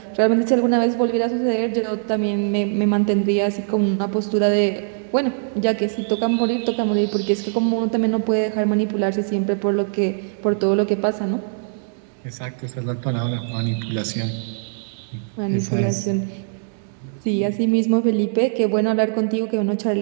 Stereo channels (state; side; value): silent; left; digital silence